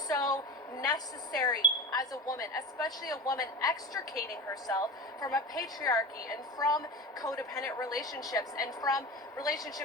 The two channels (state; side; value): normal; both; correlation 0.29